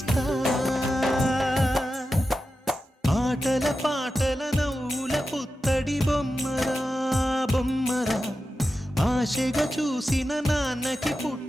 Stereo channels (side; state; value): both; normal; correlation 0.92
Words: ఆటల పాటల నవ్వుల పుత్తడి బొమ్మరా బొమ్మరా ఆశగా చూసిన నాన్నకి